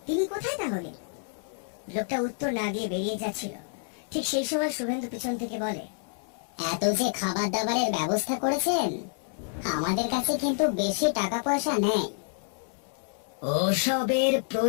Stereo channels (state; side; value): silent; right; digital silence